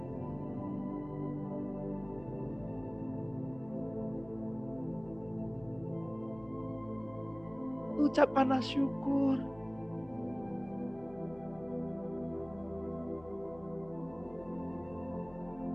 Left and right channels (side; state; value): left; noise; hum, 20 dB below the sound